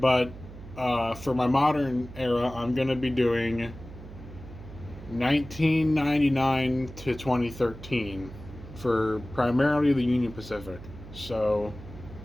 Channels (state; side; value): noise; right; hum, 15 dB below the sound